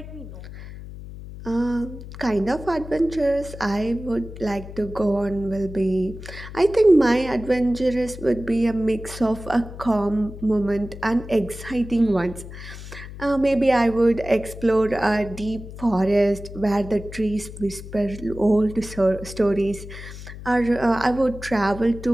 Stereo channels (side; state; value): left; noise; hum, 13 dB below the sound